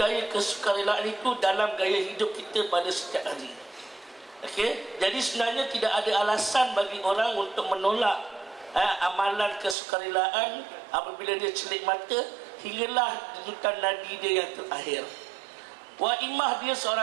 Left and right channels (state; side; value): drops out; left; at 9.8 s